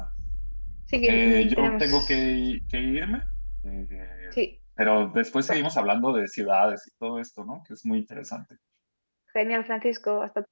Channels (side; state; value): both; inverted; correlation -1.00